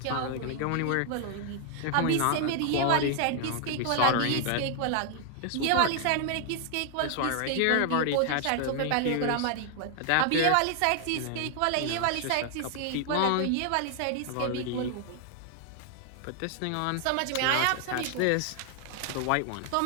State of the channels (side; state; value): both; different; correlation 0.00